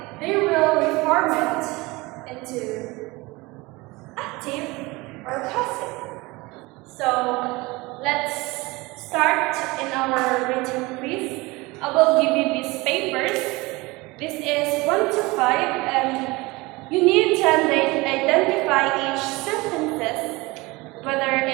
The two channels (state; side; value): quieter; left; 22.8 dB